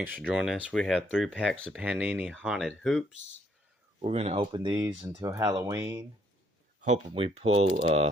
for joining us. We have 3 packs of Panini Haunted Hoops. We're going to open these until Halloween. Hoping we pull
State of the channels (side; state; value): both; normal; correlation 0.68